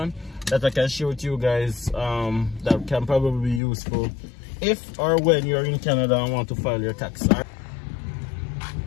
that I can share with you guys. That can probably be useful if or when you're in Canada and want to file your tax.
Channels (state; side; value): drops out; right; at 3.6 s